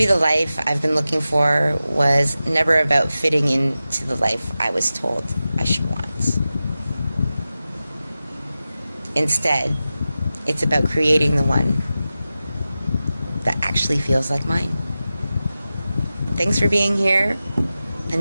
the life I've been looking for was never about fitting into the life I was told I should want. Instead, it's about creating the one that actually feels like mine. Thanks for being here.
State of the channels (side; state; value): both; inverted; correlation -0.94